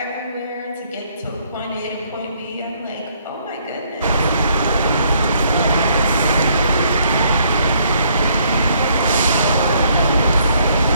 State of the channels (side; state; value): both; inverted; correlation -0.67